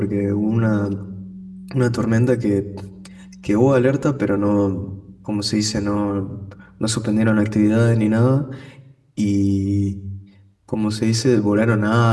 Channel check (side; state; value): both; identical; correlation 1.00